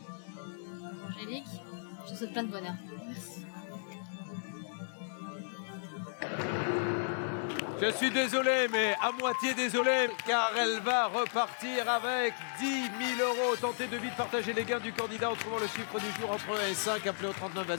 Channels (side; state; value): right; silent; digital silence